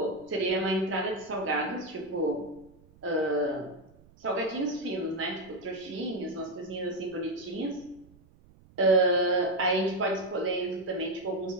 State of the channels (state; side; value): noise; right; rumble, 26 dB below the sound